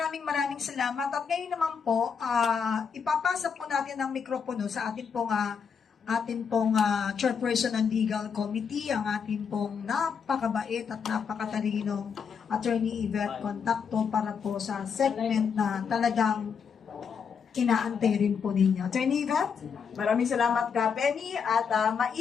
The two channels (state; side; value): quieter; right; 6.5 dB